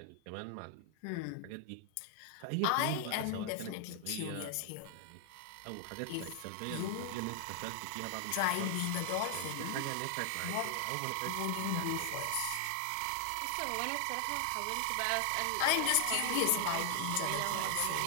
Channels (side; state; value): both; different; correlation 0.00